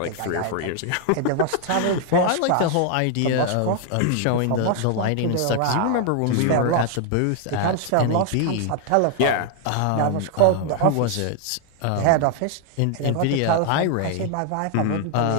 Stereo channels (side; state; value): both; different; correlation 0.00